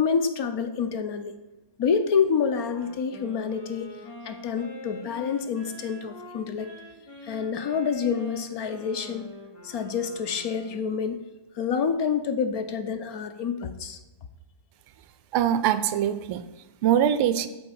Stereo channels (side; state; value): right; late; 1.2 ms